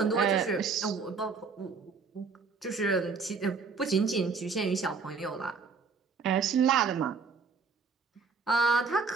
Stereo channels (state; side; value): quieter; left; 5.0 dB